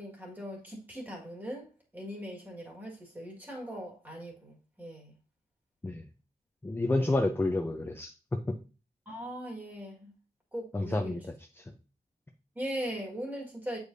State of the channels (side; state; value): both; normal; correlation 0.90